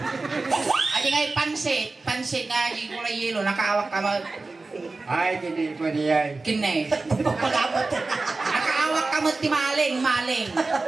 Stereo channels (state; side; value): quieter; left; 3.6 dB